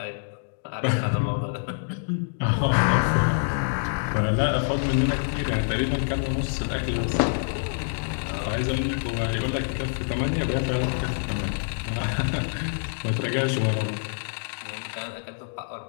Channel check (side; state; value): right; silent; digital silence